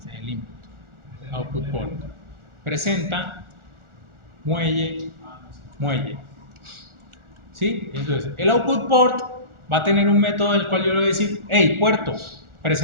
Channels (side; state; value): left; late; 1.4 ms